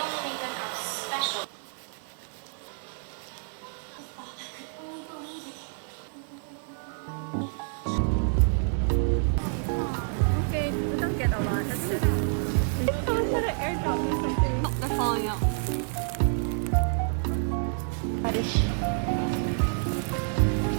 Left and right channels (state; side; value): silent; left; 59 dB below the other